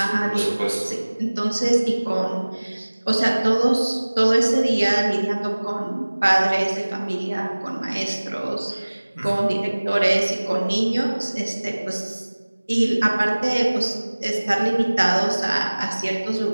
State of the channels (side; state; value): both; inverted; correlation -1.00